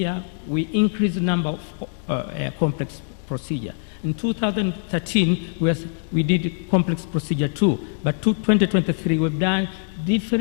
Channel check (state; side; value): silent; right; digital silence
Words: we increase the number of complex procedure. In 2013, we did complex procedure too, but 2023 we've done